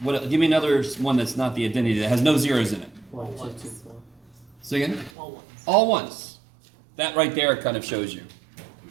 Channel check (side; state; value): left; drops out; at 5.1 s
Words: What? Give me another one that's not the identity that has no zeros in it. 1, 2, 2, 4. Say again. All ones. All ones. That right there kind of shows you.